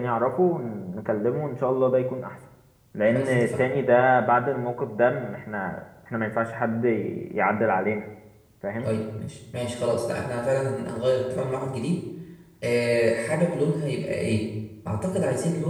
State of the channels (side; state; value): both; identical; correlation 1.00